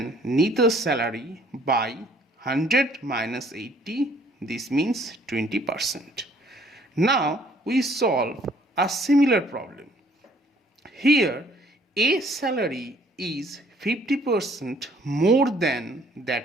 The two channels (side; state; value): both; normal; correlation 0.60